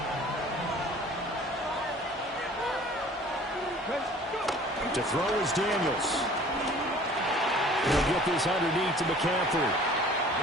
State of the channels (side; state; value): both; normal; correlation 0.49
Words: To throw is Daniels. He'll get this underneath to McCaffrey.